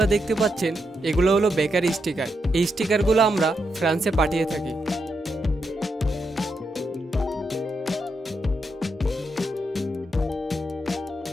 দেখতে পাচ্ছেন, এগুলো হলো বেকারি স্টিকার। এই স্টিকারগুলো আমরা ফ্রান্সে পাঠিয়ে থাকি।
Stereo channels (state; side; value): normal; both; correlation 0.83